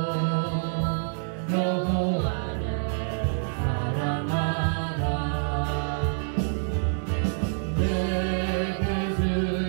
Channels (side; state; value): left; silent; digital silence